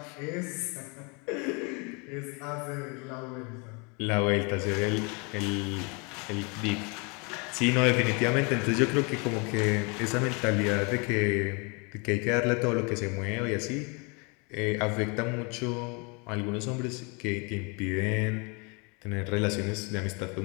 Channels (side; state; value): right; quieter; 31.5 dB